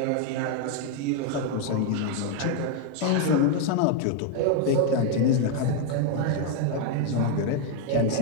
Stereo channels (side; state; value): both; different; correlation 0.01